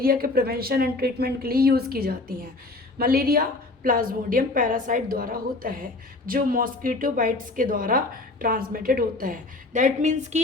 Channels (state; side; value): quieter; right; 3.1 dB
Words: के प्रिवेंशन एंड ट्रीटमेंट के लिए यूज़ की जाती हैं। मलेरिया प्लाज्मोडियम पैरासाइट द्वारा होता है जो मॉस्किटो बाइट्स के द्वारा ट्रांसमिटेड होता है। दैट मीन्स